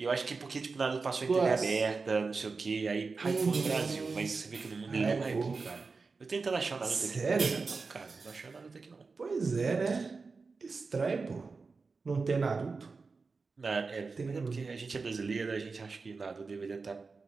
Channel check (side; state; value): left; quieter; 4.4 dB